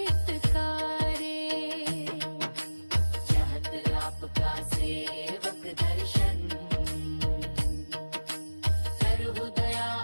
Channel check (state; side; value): inverted; both; correlation -1.00